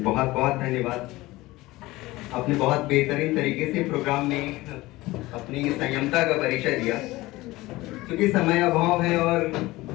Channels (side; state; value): right; quieter; 19.3 dB